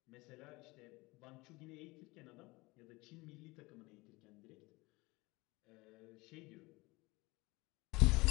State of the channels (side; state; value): right; quieter; 23.1 dB